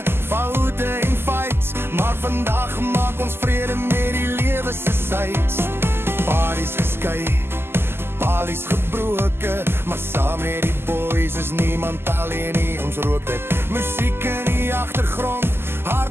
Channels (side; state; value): left; late; 0.12 ms